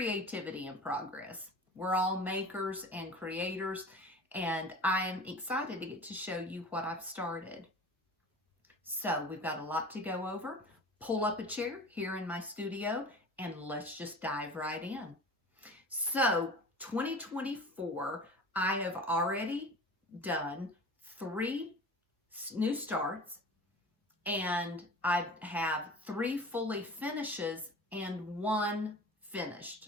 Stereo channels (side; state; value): both; normal; correlation 0.38